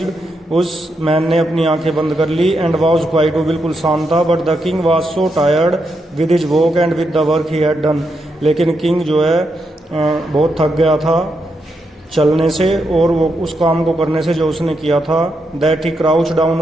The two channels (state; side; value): normal; both; correlation 0.83